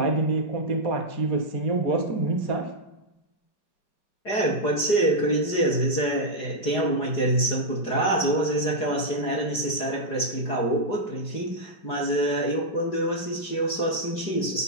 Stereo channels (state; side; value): late; right; 4.9 ms